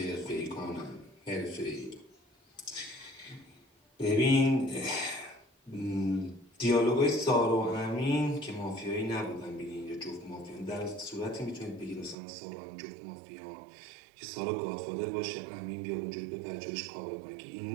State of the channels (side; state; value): left; drops out; at 12.2 s